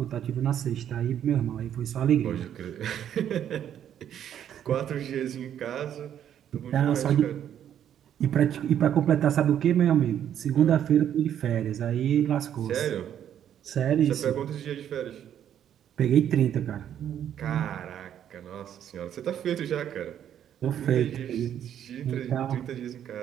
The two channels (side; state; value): left; quieter; 9.9 dB